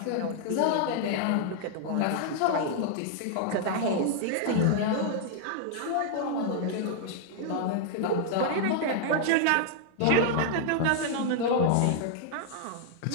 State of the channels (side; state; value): both; different; correlation 0.00